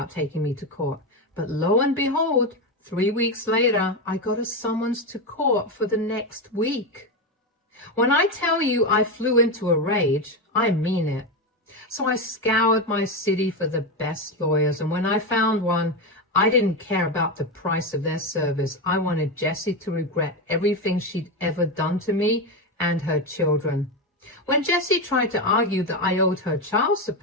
taking me to court, but lo and behold, 3 weeks later, I got a summons to court for the next week. When I tell you I flew into a rage, I mean it. So I scoured my city for the best lawyers, and when I found one, I didn't care about the price of their service. I wanted Jessie to regret everything she'd ever done to me and her children. When Jessie tried to argue that I owed her child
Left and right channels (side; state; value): both; normal; correlation 0.13